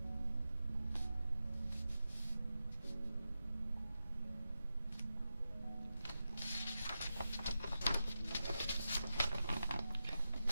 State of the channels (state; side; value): inverted; both; correlation -0.90